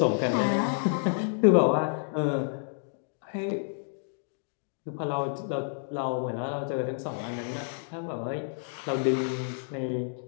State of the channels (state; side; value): silent; right; digital silence